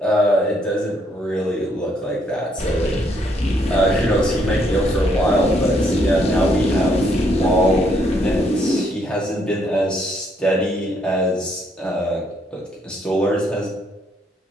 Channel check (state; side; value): normal; both; correlation 0.71